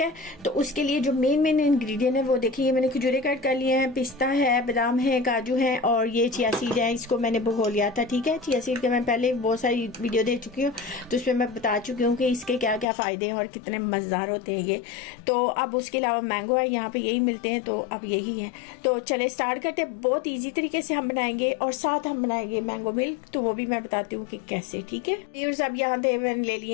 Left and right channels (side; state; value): right; drops out; at 12.9 s